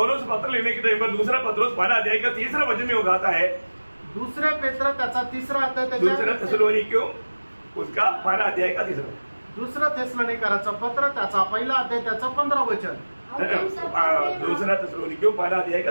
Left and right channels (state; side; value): inverted; both; correlation -1.00